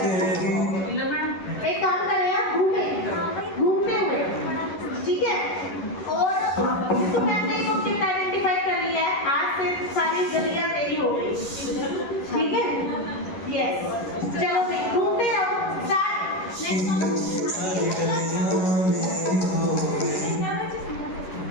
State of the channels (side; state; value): right; late; 11 ms